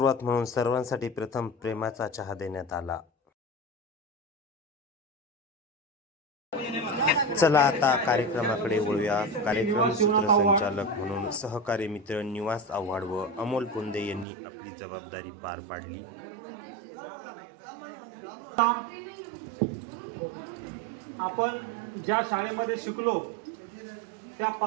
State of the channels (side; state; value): left; drops out; at 14.2 s